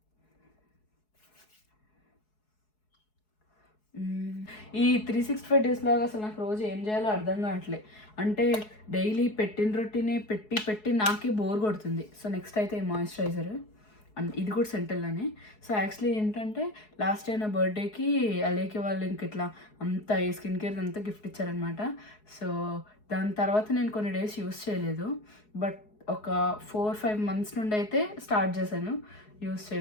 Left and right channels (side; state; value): right; late; 4.7 ms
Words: ఈ 365 days లాగా అసలు నాకు రోజు ఏం చేయాలో అర్థం కావట్లే. అంటే డైలీ పెట్టిన రొటీనే పెట్టి నాకే బోర్ కొడుతుంది. సో నెక్స్ట్ అయితే ఈ మాయిశ్చరైజర్, అండ్ ఇది కూడా సెంటల్లోనే. సో యాక్చువల్లీ ఏంటంటే లాస్ట్ టైం నా బర్త్డేకి అలేకే వాళ్ళు ఇంక ఇట్లా అంతా ఈ స్కిన్ కేర్ అంతా గిఫ్ట్ ఇచ్చారనమాట. సో దాని తర్వాత నేను కొన్ని డేస్ యూస్ చేయలేదు, బట్ ఒక 4-5 months నుండి అయితే స్టార్ట్ చేశాను యూస్